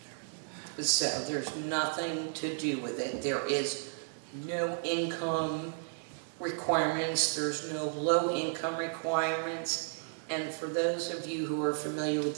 So there's nothing to do with it. There is no income. requirements, there's no low-income requirements, and for those of you who are familiar with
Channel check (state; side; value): silent; left; digital silence